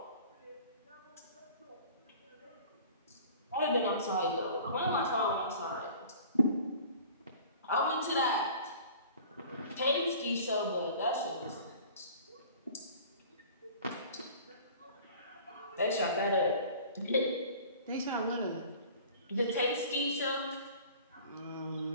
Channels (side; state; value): both; inverted; correlation -0.45